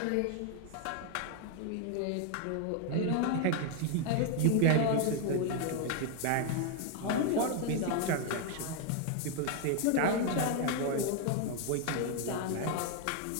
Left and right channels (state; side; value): different; both; correlation 0.00